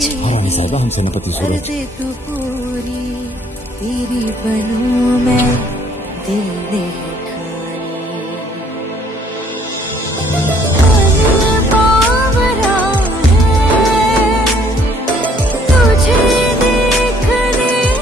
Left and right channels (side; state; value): both; normal; correlation 0.62